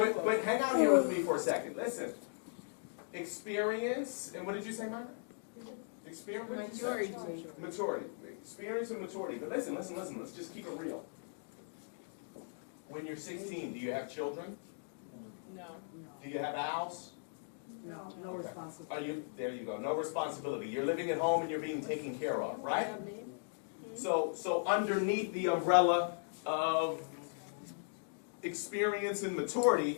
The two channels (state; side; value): silent; right; digital silence